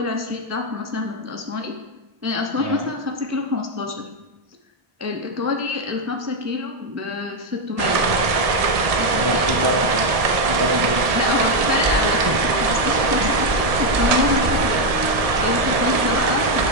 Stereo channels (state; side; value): late; left; 1.7 ms